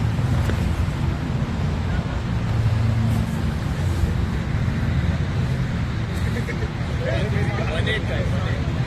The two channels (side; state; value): both; identical; correlation 1.00